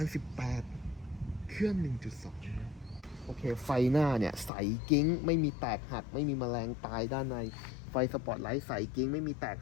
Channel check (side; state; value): right; drops out; at 4.5 s